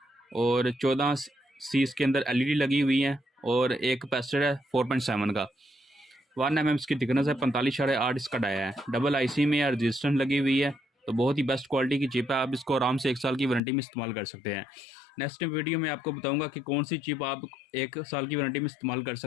और 14 सी इसके अंदर एलईडी लगी हुई है और एक कैपेसिटर है 4.7 का। 1 mm इसकी थिकनेस है, 45.8 इसका डाया है। डबल आईसी में रजिस्टेंस लगी हुई है, तो बहुत ही बेस्ट क्वालिटी की चिप है। आप इसको आराम से 1 साल की वारंटी में इस्तेमाल कर सकते हैं। नेक्स्ट वीडियो में आपको बताऊंगा कि कौन सी चिप आप 1 साल की वारंटी में इस्तेमाल कर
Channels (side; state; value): right; drops out; at 13.6 s